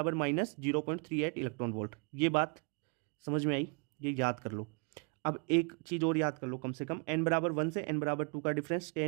-0.38 इलेक्ट्रॉन वोल्ट। ये बात समझ में आई, ये याद कर लो। अब एक चीज़ और याद कर लो कम से कम, n बराबर 1 से n बराबर 2 का डिफरेंस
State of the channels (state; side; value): quieter; left; 35.6 dB